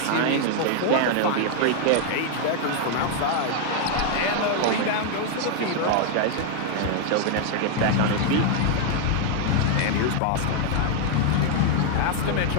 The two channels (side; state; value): both; different; correlation 0.00